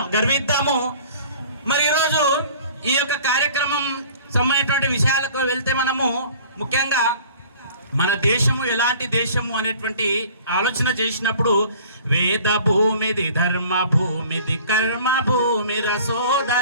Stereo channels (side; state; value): both; inverted; correlation -0.48